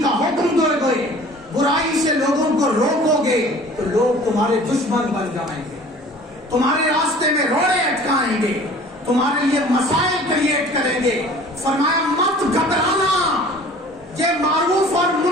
کا حکم دو گے, برائی سے لوگوں کو روکو گے, تو لوگ تمہارے دشمن بن جائیں گے, تمہارے راستے میں روڑے اٹکائیں گے, تمہارے لیے مسائل کریٹ کریں گے. فرمایا مت گھبرانا. یہ معروف اور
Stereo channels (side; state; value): both; normal; correlation 0.47